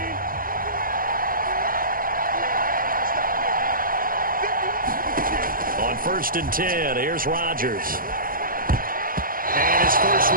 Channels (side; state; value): left; late; 0.41 ms